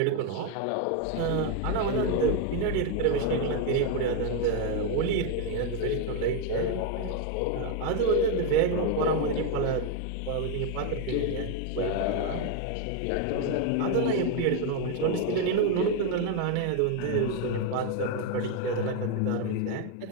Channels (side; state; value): both; different; correlation 0.01